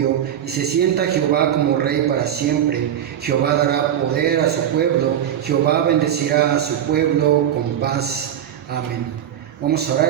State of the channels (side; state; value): left; quieter; 10.2 dB